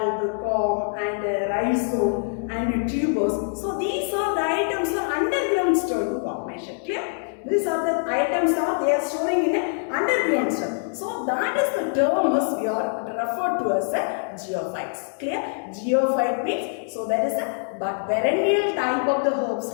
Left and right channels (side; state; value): right; silent; digital silence